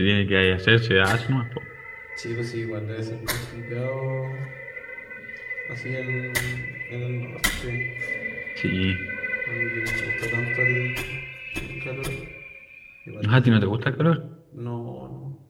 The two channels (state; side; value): identical; both; correlation 1.00